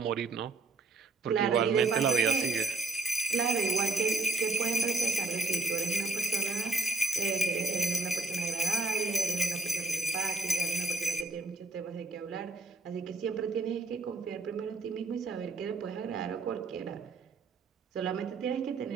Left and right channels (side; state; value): left; quieter; 3.5 dB